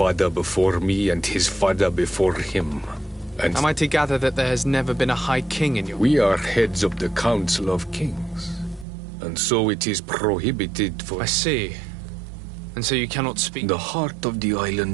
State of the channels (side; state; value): left; drops out; at 8.8 s